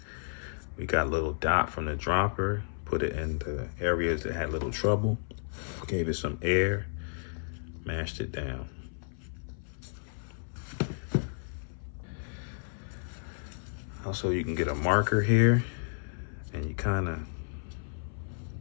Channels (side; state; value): right; silent; 56 dB below the other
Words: We got a little dot from the dropper, put it in the areas that had little trouble, gave it some air, mashed it down. Also, you can get a marker here and you kind of